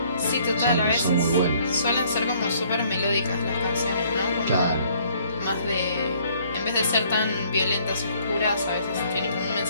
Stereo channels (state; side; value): inverted; both; correlation -0.61